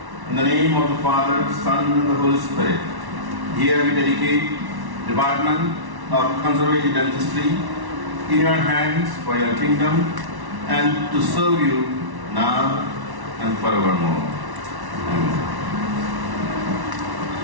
in the name of the Father, Son, and the Holy Spirit, here we dedicate Department of Conservative Dentistry in Your hands for Your kingdom and to serve You now and forevermore. Amen.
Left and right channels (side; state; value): left; late; 1.1 ms